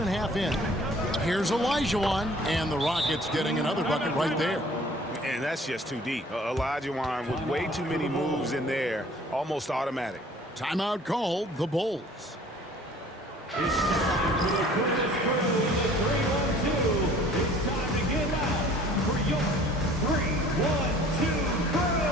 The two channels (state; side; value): normal; both; correlation 0.52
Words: a half in. Here's Olajuwon. And the Rockets getting another bucket right there. And that's just too deep. Olajuwon with way too many moves in there. Almost automatic. Timeout called. The Bulls. It's time for the quickest crew in the 3-1-2. It's time to get out for your 3-1-2 crew.